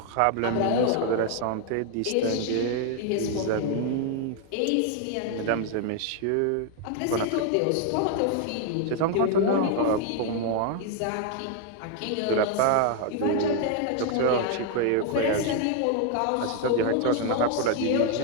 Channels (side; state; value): both; different; correlation 0.00